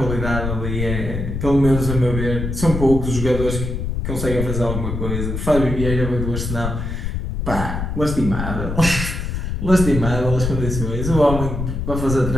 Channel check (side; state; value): left; noise; rumble, 3 dB below the sound